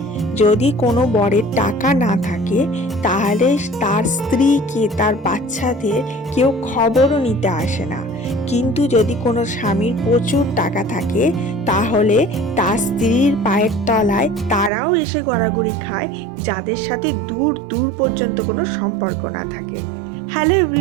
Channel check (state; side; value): drops out; left; at 14.7 s